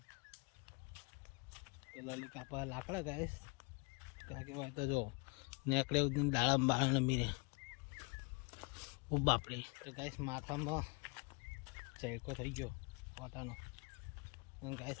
તો લલી કાપા લાકડા ગાઈશ ત્યાં કહેવાય તો જો નેકડે દાડા બાળા મીરે ઓ બાપરે. તો ગાઈસ માથામાં ચેકો થઈ ગયો કોટાનો. અને ગાઈસ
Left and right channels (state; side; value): quieter; right; 32.1 dB